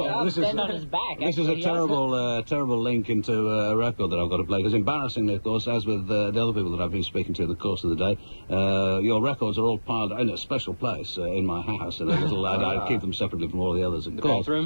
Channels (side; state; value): both; inverted; correlation -1.00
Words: is a terrible link into a record that I've got to play. Because embarrassingly, of course, as with the other people that I've been speaking to in the course of the day, your records are all piled in a special place in my house. In a little, I keep them separately from all the others. Of course,